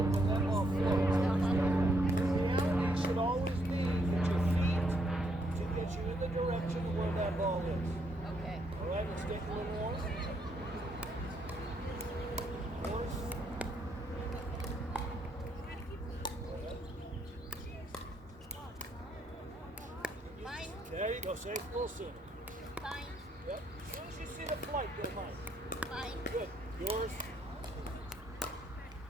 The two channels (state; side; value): normal; both; correlation 0.73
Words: when that ball floats. The reality should always be that your feet to get you in the direction of where that ball is. Okay. All right, let's get a little more. Mine. There you go, say it a little sooner. Mine. Yep. As soon as you see the flight, go mine. Mine. Good. Yours.